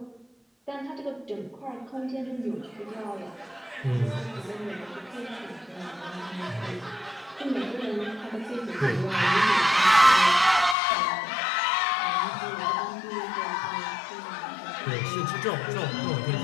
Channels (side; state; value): right; drops out; at 10.8 s